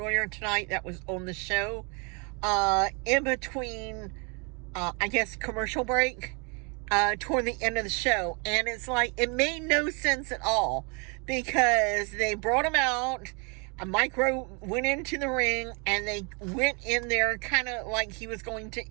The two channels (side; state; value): left; quieter; 33.5 dB